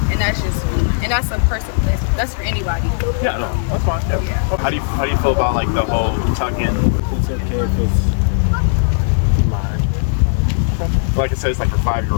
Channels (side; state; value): right; silent; 68 dB below the other